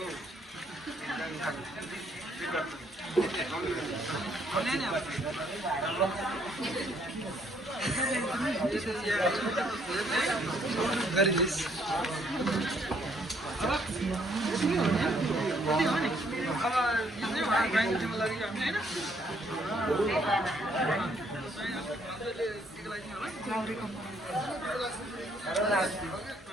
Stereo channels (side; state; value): both; normal; correlation 0.68